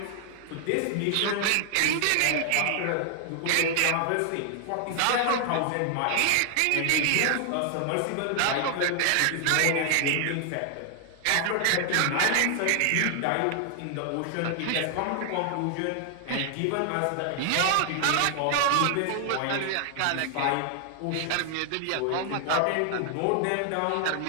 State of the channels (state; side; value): different; both; correlation 0.00